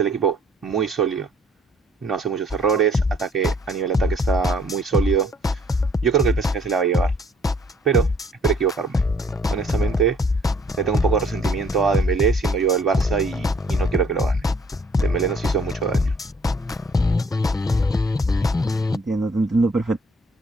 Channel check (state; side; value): normal; both; correlation 0.61